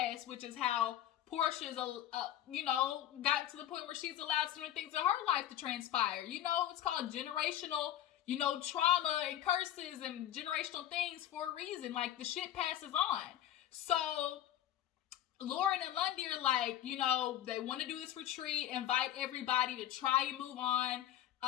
which is how Porsha's, gotten to the point where she's allowed certain things in her life to transpire. It's called generational, trauma and curses and generational things for a reason. Like, the shit passes on. So Lauren and Londie are like, they want to do this retreat, invite everybody to try and move on.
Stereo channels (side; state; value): right; quieter; 11.9 dB